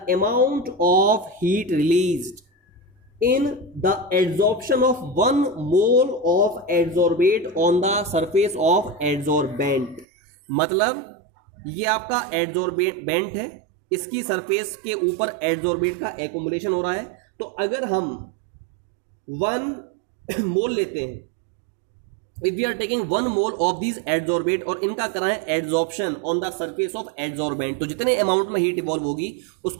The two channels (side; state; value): left; drops out; at 10.1 s